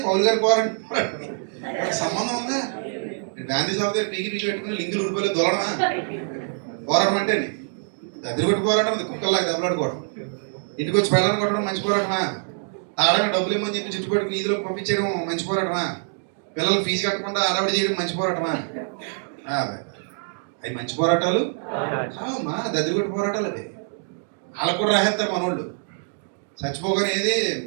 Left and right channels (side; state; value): left; silent; 62 dB below the other